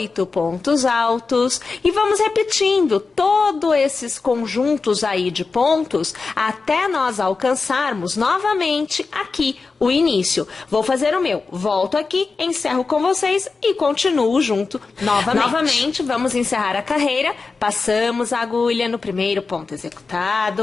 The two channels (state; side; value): quieter; right; 4.3 dB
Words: pontos altos e vamos repetindo todos esses conjuntos aí de pontos até nós alcançarmos novamente aqui o início. Vou fazer o meu, volto aqui, encerro com vocês e continuo junto novamente. Novamente, vamos encerrar a carreira, passamos a agulha no primeiro ponto